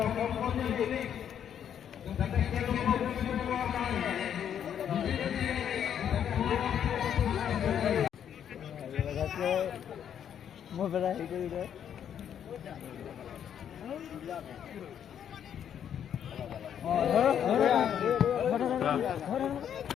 Mau berapa itu udah?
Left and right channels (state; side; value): quieter; right; 9.1 dB